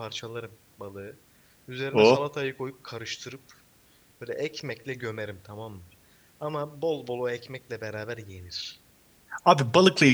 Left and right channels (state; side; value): identical; both; correlation 1.00